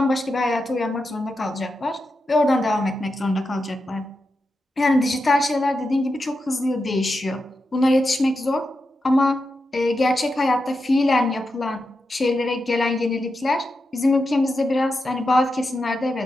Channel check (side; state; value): both; normal; correlation 0.88